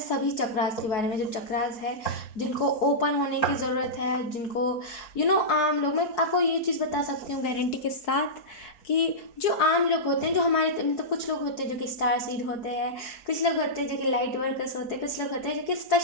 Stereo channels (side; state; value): right; late; 4.7 ms